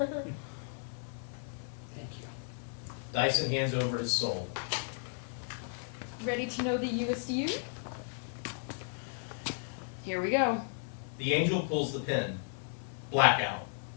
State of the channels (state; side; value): silent; right; 55 dB below the other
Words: you. Dyson hands over his soul. Ready to know the newest you? Here we go. The angel pulls the pin. Blackout.